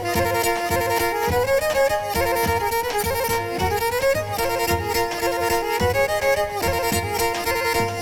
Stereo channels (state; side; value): identical; both; correlation 1.00